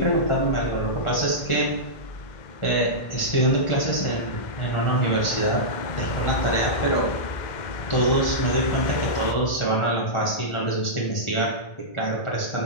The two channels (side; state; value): right; late; 2.1 ms